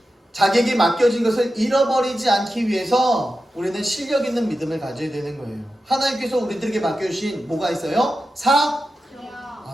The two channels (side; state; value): both; normal; correlation 0.91